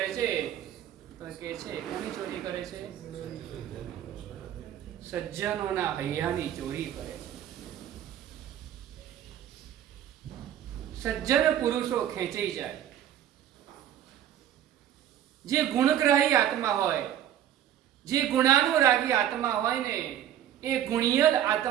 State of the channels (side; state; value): left; quieter; 10.9 dB